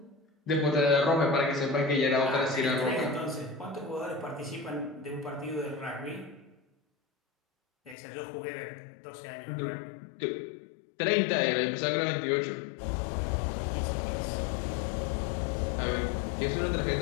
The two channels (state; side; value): drops out; right; at 8.0 s